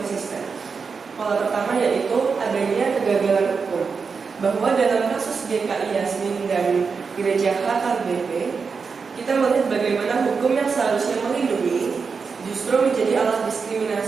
Pola pertama yaitu adanya kegagalan hukum, bahwa dalam kasus GKI Yasmin dan Gereja HKBP, kita melihat bagaimana hukum yang seharusnya melindungi justru menjadi alat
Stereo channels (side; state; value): left; quieter; 5.3 dB